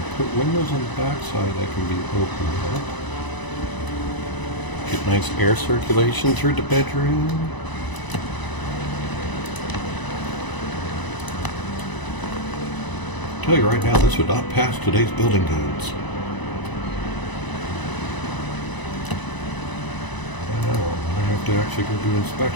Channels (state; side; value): late; right; 1.0 ms